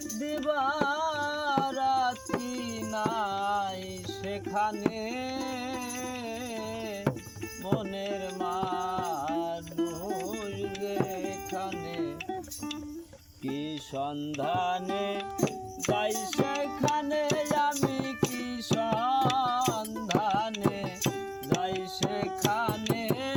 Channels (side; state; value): both; identical; correlation 1.00